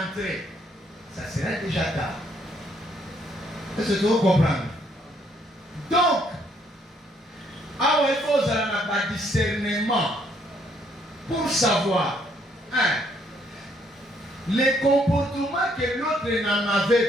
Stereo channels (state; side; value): normal; both; correlation 0.69